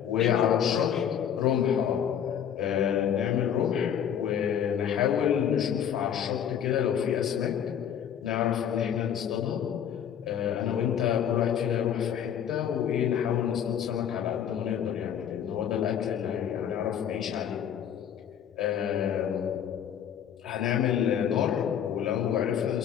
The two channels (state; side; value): quieter; right; 8.9 dB